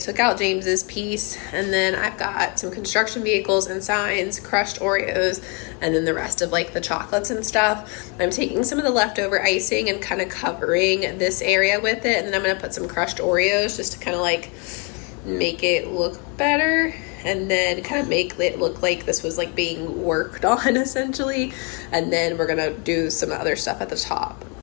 out James's piece, and then I've got some construction vehicles and signs, crushed Oreos, and then the rest of like the chocolates and stuff. I'm taking some of the leftover icing and kind of covering this area with it, and then I'm gonna put some crushed Oreos just to kind of like make it look better, and then kind of make it look like this was like being worked on essentially. And then we're gonna do some other stuff at the top.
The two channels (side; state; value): right; quieter; 32.7 dB